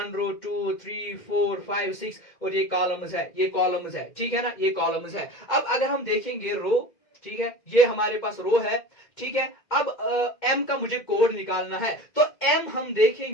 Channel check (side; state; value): right; late; 2.1 ms